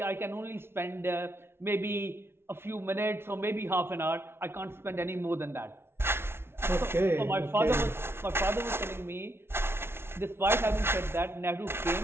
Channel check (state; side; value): late; left; 0.12 ms